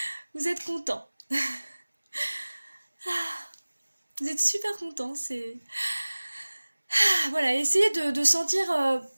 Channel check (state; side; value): inverted; both; correlation -1.00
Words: Vous êtes content. Vous êtes super content, c'est... Voilà, essayez de sentir